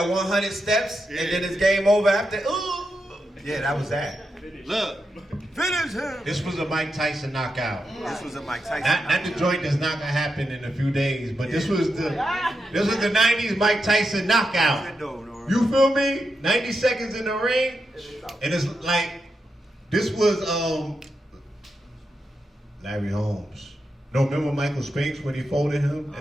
100 steps and then it's game over after, ooh. Yeah, that was that. Look. Finish him. This was a Mike Tyson knockout. This was a Mike Tyson Not the joint that's not gonna happen in a few days, but this was the 90s Mike Tyson knockout. You feel me? 90 seconds in the ring, and it's like this was Larry Holmes. No, remember Michael Spinks when he folded him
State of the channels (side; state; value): both; normal; correlation 0.86